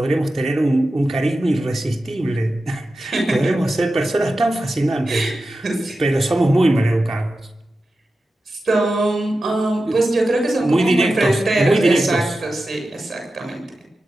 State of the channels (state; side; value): normal; both; correlation 0.92